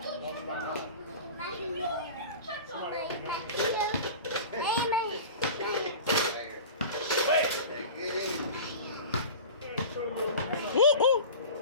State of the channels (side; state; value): both; inverted; correlation -0.35